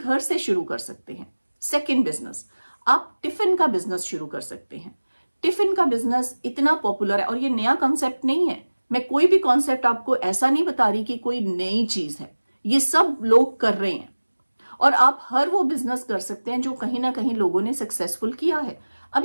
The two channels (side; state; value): both; inverted; correlation -1.00